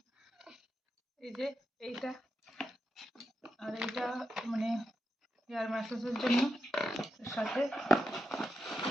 এই যে এইটা আর এইটা মানে হেয়ার ম্যাসাজের জন্য, এর সাথে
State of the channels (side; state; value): both; normal; correlation 0.87